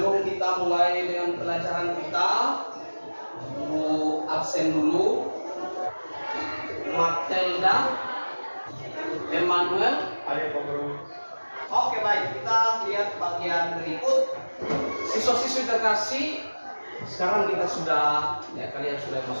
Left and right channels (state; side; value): inverted; both; correlation -1.00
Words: kita mulai dengan pelajaran kita, Bu absen dulu. Matilda, Emmanuel. Ayo Pak Guru. Oke baik, kita lihat bagian berikut. Siswa-siswi terkasih, sekarang kita sudah, ya kalian sudah